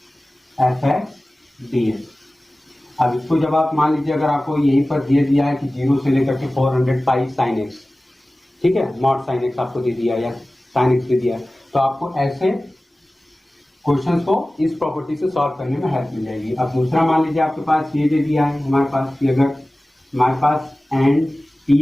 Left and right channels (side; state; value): both; normal; correlation 0.97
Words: f x d x. अब इसको जब आप मान लीजिए अगर आपको यहीं पर दे दिया है कि 0 से लेकर के 400 पाई साइन एक्स, ठीक है, मॉड साइन एक्स आपको दे दिया या साइन एक्स दे दिया, तो आपको ऐसे क्वेश्चंस को इस प्रॉपर्टी से सॉल्व करने में हेल्प मिल जाएगी। अब दूसरा मान लीजिए आपके पास ये दे दिया है हमारे पास कि अगर हमारे पास एन